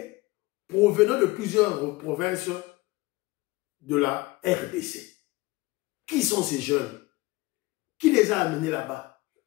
provenant de plusieurs provinces de la RDC. Qui sont ces jeunes? Qui les a amenés là-bas?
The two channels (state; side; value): quieter; right; 21.4 dB